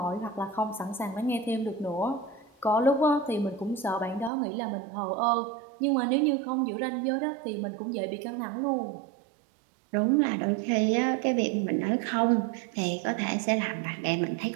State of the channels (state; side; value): drops out; left; at 4.3 s